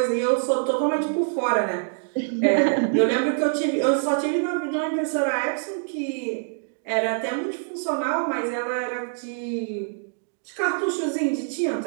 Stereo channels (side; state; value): left; silent; digital silence